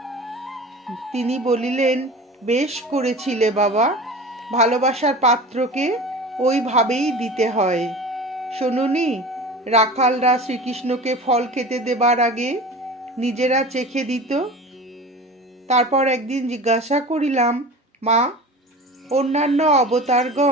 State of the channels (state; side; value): normal; both; correlation 0.35